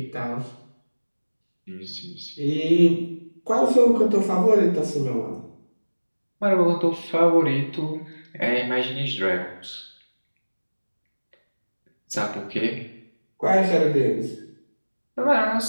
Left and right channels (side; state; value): both; inverted; correlation -1.00